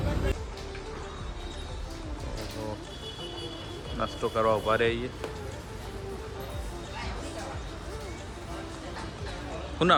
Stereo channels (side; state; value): both; identical; correlation 1.00